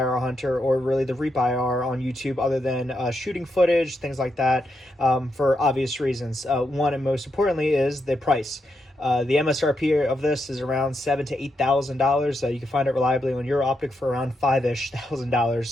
or really the Reap IR on YouTube other than shooting footage, things like that, for obvious reasons. One and most importantly is the price. The MSRP of this is around $7,000 to $8,000. You can find it reliably on your Optic for around $5,000-ish.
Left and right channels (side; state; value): both; normal; correlation 0.83